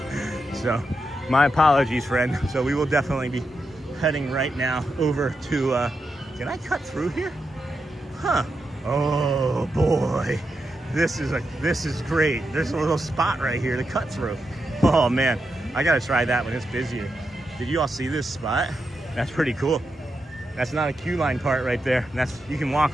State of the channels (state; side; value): normal; both; correlation 0.86